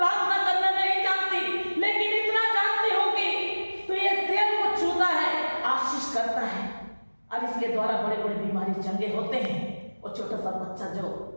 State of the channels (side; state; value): both; inverted; correlation -1.00